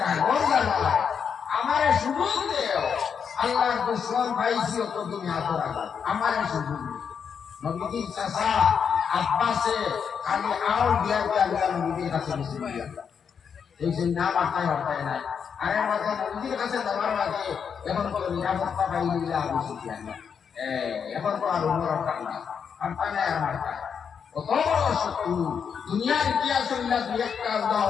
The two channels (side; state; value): right; quieter; 6.9 dB